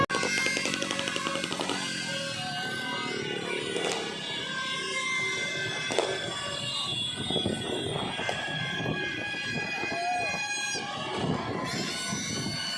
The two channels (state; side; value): identical; both; correlation 1.00